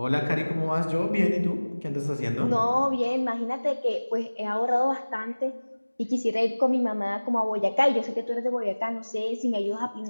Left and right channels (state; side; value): inverted; both; correlation -1.00